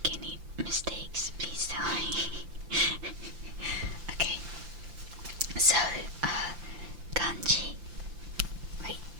any mistakes, please tell me. Okay. So, kanji. Wait.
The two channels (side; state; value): left; late; 5.8 ms